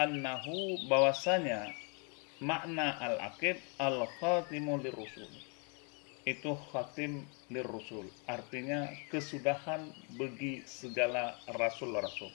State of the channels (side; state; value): right; quieter; 36.7 dB